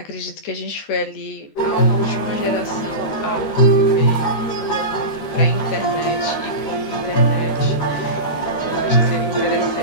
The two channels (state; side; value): late; right; 13 ms